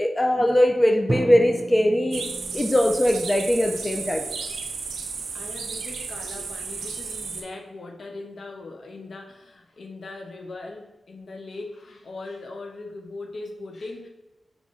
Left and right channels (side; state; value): both; normal; correlation 0.96